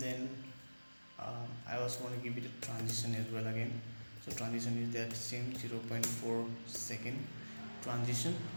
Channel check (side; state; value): both; inverted; correlation -1.00